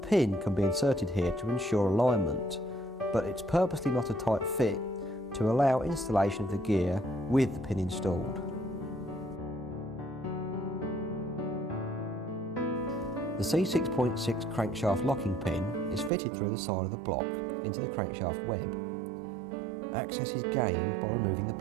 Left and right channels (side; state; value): left; drops out; at 16.1 s